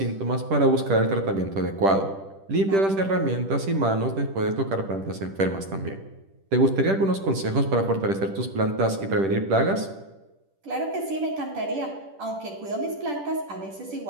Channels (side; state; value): left; late; 10 ms